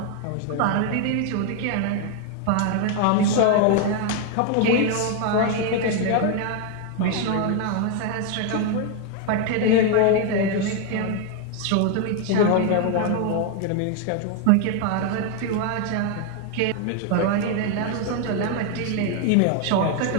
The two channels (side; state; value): both; different; correlation 0.01